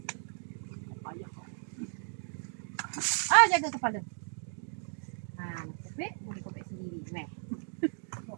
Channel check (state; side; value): silent; left; digital silence